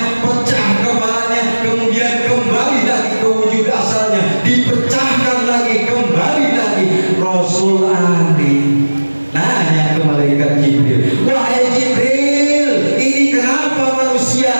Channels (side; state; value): both; inverted; correlation -1.00